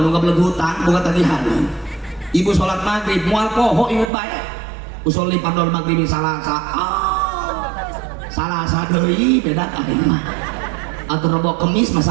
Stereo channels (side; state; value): left; drops out; at 4.1 s